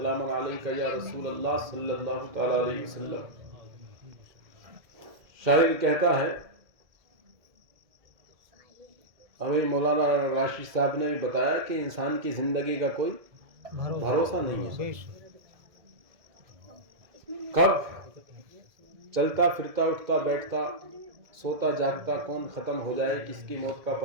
علیک یا رسول اللہ صلی اللہ تعالی علیہ وسلم۔ شاعر کہتا ہے، ہمیں مولانا راشد صاحب نے بھی بتایا کہ انسان کی زندگی کا کوئی بھروسہ نہیں ہے، کب چلتا پھرتا اٹھتا بیٹھتا سوتا جاگتا کون ختم ہو جائے، کس کی موت کا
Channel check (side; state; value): left; late; 2.1 ms